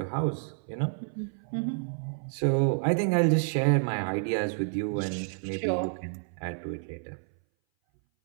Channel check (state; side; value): silent; left; 58 dB below the other